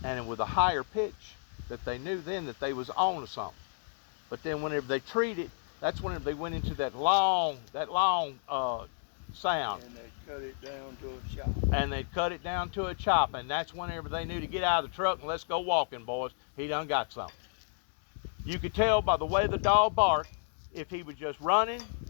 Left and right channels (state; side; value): silent; right; digital silence